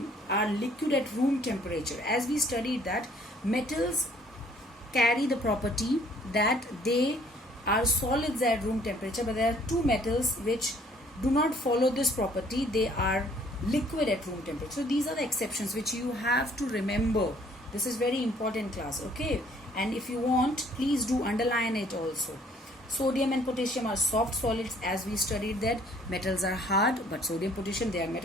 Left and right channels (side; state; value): both; normal; correlation 0.60